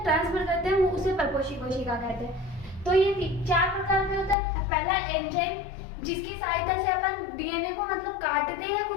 ट्रांसफर करते हैं वो उसे परपोषी कोशिका कहते हैं। तो ये चार प्रकार के होता है। पहला एंजाइम जिसकी सहायता से अपन डीएनए को मतलब काटते हैं,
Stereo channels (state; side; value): drops out; right; at 4.4 s